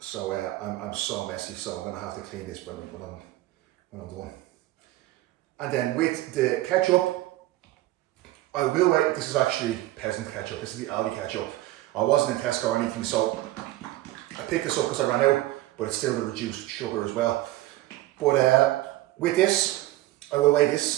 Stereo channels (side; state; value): left; quieter; 16.6 dB